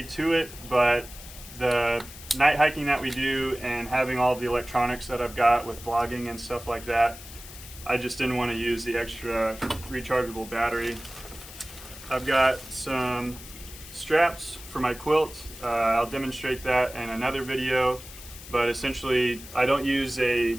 to it, but the night hiking that we do and having all the electronics that I've got with vlogging and stuff like that, I just didn't want to use the extra rechargeable battery. I've got some straps for my quilt. I'll demonstrate that in another video, but essentially I don't use a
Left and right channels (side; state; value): left; noise; hiss, 15 dB below the sound